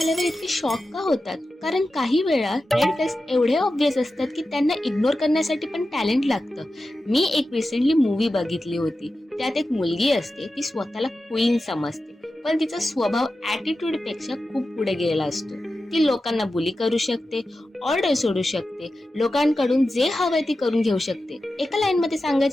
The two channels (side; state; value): both; normal; correlation 0.92